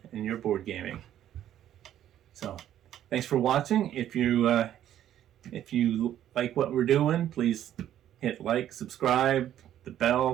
in your board gaming. So thanks for watching. If you like what we're doing, please hit like, subscribe, the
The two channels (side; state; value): left; quieter; 11.4 dB